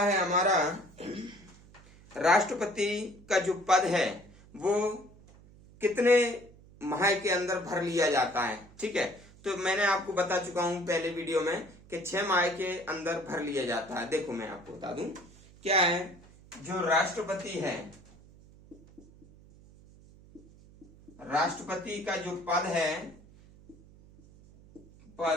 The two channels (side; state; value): right; noise; hum, 23 dB below the sound